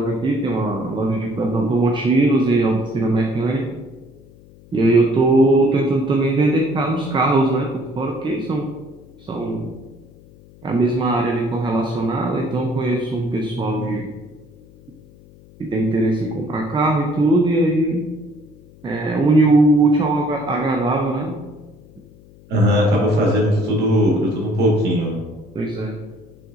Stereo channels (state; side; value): noise; left; hum, 24 dB below the sound